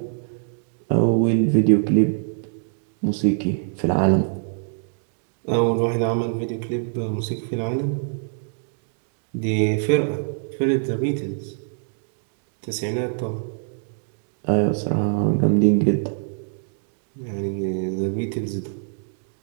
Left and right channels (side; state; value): left; silent; digital silence